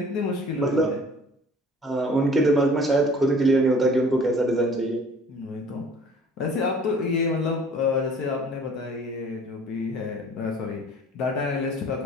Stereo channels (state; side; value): normal; both; correlation 0.50